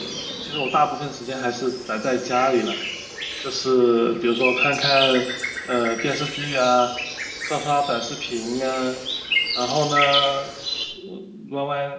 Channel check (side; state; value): both; identical; correlation 1.00